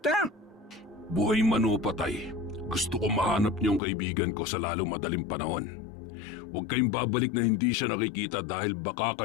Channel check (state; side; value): drops out; right; at 3.8 s